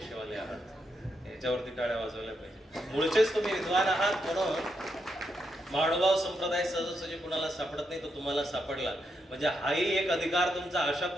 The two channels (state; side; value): normal; both; correlation 0.82